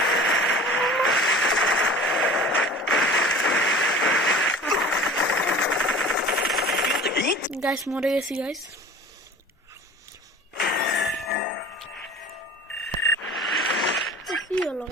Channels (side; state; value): both; normal; correlation 0.42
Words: গাইস মরে গেছি গাইস। কি হলো